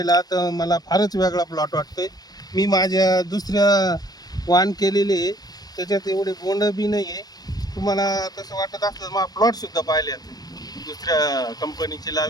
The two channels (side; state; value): right; late; 0.19 ms